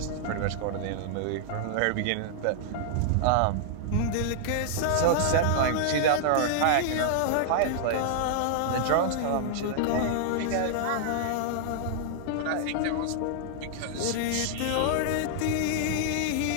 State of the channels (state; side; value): different; both; correlation -0.01